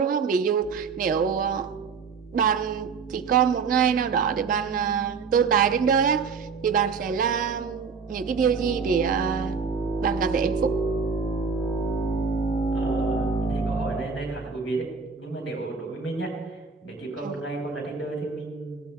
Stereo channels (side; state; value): left; quieter; 5.5 dB